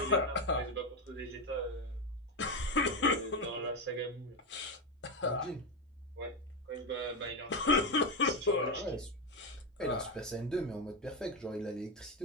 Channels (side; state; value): both; normal; correlation 0.10